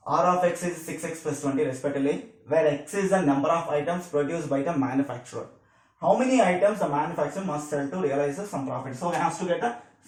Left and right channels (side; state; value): both; identical; correlation 1.00